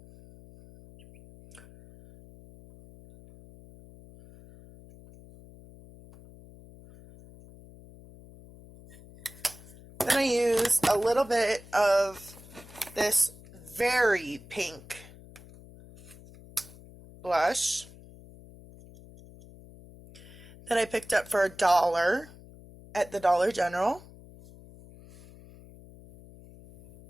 Then I use a little bit of this very pink blush that I picked up for $1 at the Dollar General.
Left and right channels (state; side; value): noise; left; hum, 21 dB below the sound